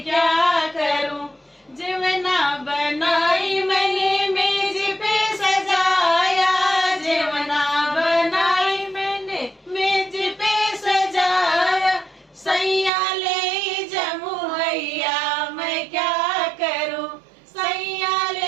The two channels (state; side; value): drops out; left; at 12.9 s